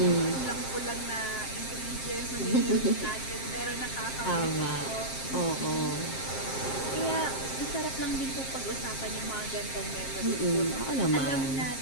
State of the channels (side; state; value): right; late; 7.5 ms